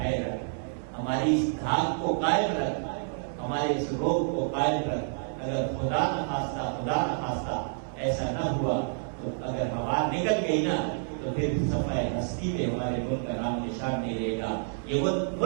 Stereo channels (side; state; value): left; silent; 59 dB below the other